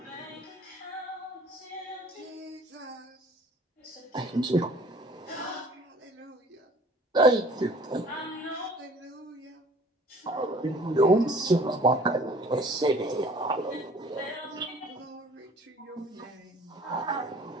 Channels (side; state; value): both; normal; correlation 0.51